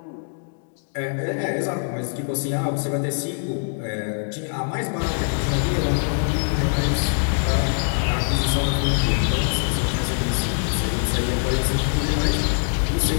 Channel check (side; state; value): right; silent; digital silence